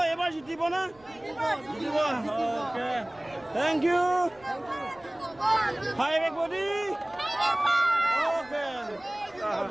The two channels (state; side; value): noise; right; rumble, 28 dB below the sound